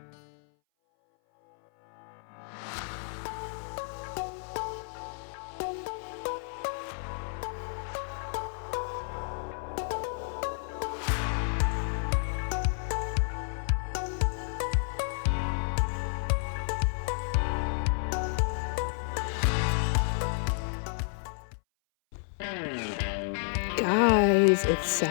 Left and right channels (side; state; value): right; silent; 57 dB below the other